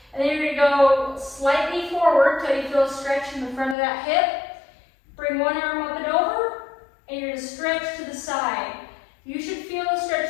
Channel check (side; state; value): right; drops out; at 3.8 s